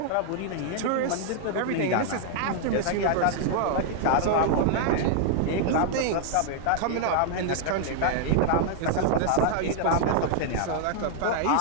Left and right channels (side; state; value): both; different; correlation 0.00